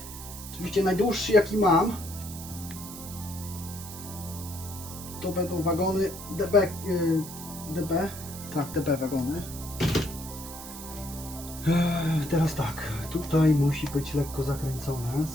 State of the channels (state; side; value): noise; right; hiss, 12 dB below the sound